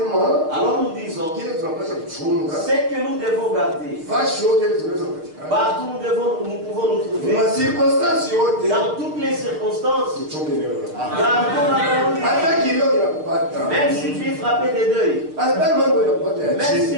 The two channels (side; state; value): left; late; 6.6 ms